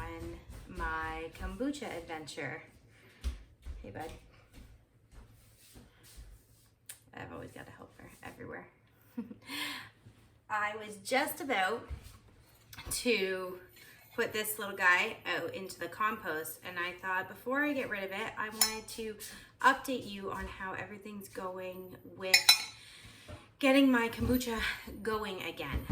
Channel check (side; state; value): both; identical; correlation 1.00